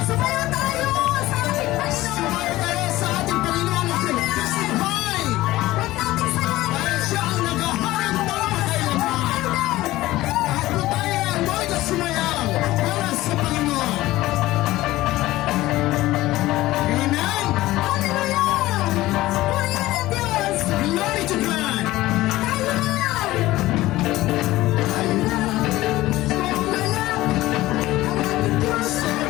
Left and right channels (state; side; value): quieter; right; 17.2 dB